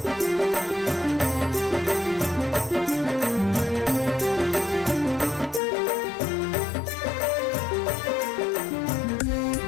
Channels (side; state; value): right; drops out; at 5.6 s